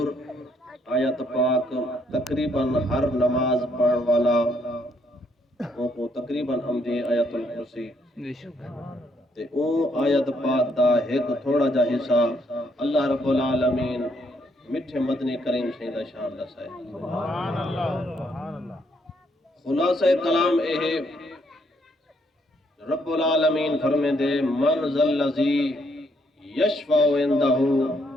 آیت پاک تقریباً ہر نماز پڑھن والا کو تقریباً ہمدی آیت الکرسی تے او آیت پاک دا ایک تھوڑا جا حصہ اللہ رب العالمین مٹھے مدنی کریم شہیدہ شان دسائے سبحان اللہ خلاصہ کلام اے رب العالمین فرمے دے من ذا الذی یشفع عندہ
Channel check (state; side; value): normal; both; correlation 0.72